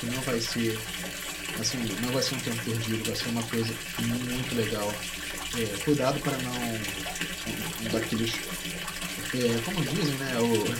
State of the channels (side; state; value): both; identical; correlation 1.00